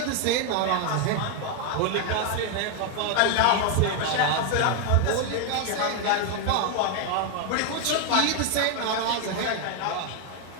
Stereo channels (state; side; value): different; both; correlation 0.01